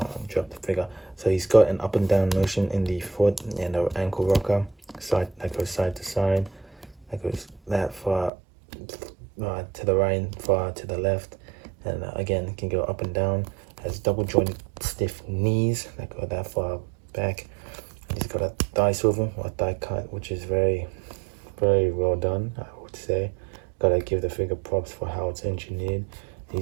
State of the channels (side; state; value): left; drops out; at 8.3 s